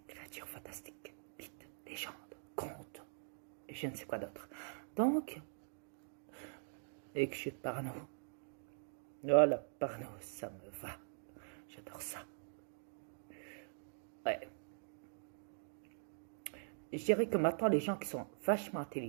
créatures fantastiques, mythes, légendes, contes, et je ne sais quoi d'autre. Donc, et que je suis parano. Oh, la parano, ça me va. J'adore ça. Ouais. Je dirais que maintenant, les gens qui sont vachement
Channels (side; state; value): left; silent; digital silence